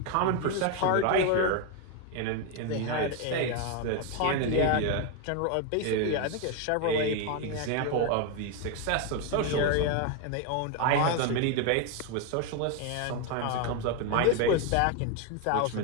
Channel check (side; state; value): both; different; correlation 0.01